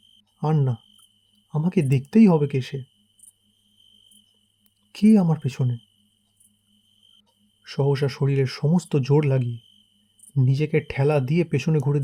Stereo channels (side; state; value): both; identical; correlation 1.00